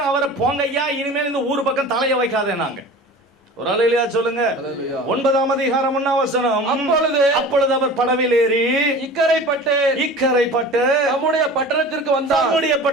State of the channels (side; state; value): both; normal; correlation 0.38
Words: அவரை போங்க ஐயா, இனிமேல் இந்த ஊர் பக்கம் தலைய வைக்காதே. நாங்க ஒரு அல்லேலூயா சொல்லுங்க. 9ஆம் அதிகாரம் 1ஆம் வசனம். அப்பொழுது அவர் படவில் ஏறி இக்கரைப்பட்டு நம்முடைய பட்டணத்திற்கு